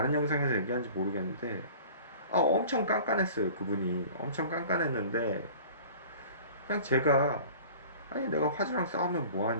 영상에서 얘기한지 모르겠는데 엄청 깐깐했어요. 그분이 엄청 깐깐했는데 그냥 제가 아니 내가 화주랑 싸우면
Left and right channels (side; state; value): both; inverted; correlation -0.44